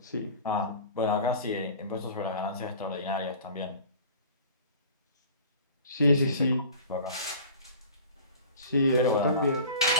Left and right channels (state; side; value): inverted; both; correlation -0.42